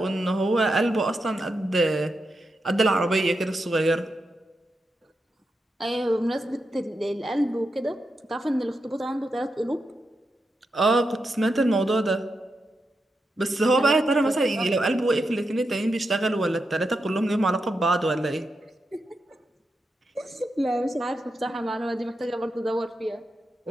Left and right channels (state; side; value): normal; both; correlation 0.87